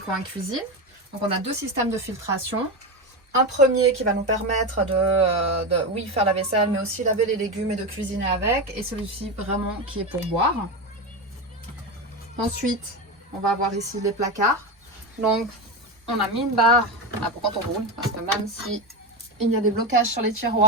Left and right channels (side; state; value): both; normal; correlation 0.16